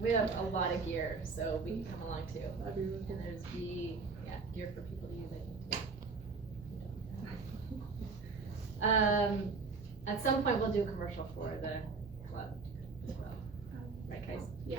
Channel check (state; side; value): quieter; left; 4.5 dB